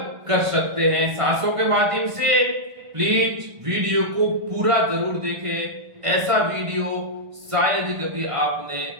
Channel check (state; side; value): late; left; 1.5 ms